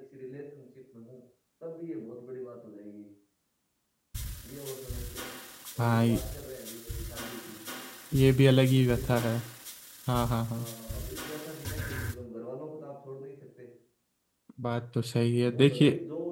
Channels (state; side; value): identical; both; correlation 1.00